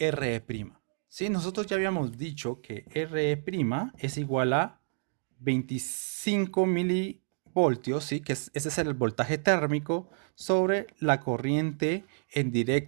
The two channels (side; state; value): left; silent; digital silence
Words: ¿Sí? Nosotros ya habíamos dicho que RE' es igual a 25 milivoltios, ¿sí? Ese es el voltaje térmico sobre la corriente en